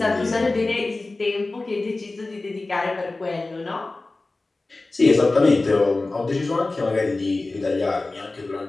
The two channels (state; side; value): quieter; right; 3.2 dB